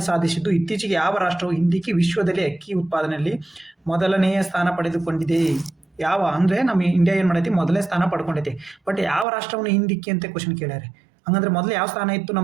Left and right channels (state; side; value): drops out; left; at 9.2 s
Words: ಸಾಧಿಸಿದ್ದು ಇತ್ತೀಚೆಗೆ ಯಾವ ರಾಷ್ಟ್ರವು ಹಿಂದಿಕ್ಕಿ ವಿಶ್ವದಲ್ಲಿ ಅಕ್ಕಿ ಉತ್ಪಾದನೆಯಲ್ಲಿ ಮೊದಲನೆಯ ಸ್ಥಾನ ಪಡೆದುಕೊಂಡಿದೆ? ಯಾವ ಅಂದರೆ ನಮ್ಮ ಇಂಡಿಯಾ ಏನು ಮಾಡೈತಿ, ಮೊದಲನೇ ಸ್ಥಾನ ಪಡ್ಕೊಂಡೈತಿ. ಬಟ್ ಯಾವ ರಾಷ್ಟ್ರವನ್ನು ಹಿಂದಿಕ್ಕಿ ಅಂತ ಕ್ವಶನ್ ಕೇಳ್ಯಾರೆ. ಹಂಗಂದ್ರೆ ಮೊದಲು ಯಾವ ಸ್ಥಾನ ಇತ್ತು?